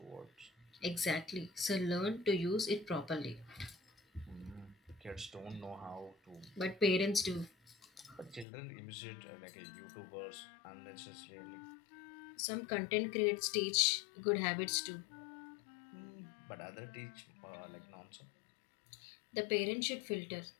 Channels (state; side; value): drops out; right; at 8.5 s